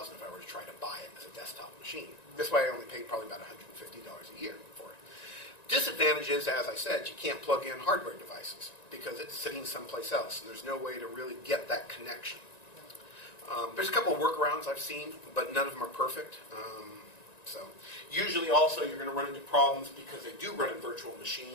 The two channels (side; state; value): right; late; 1.9 ms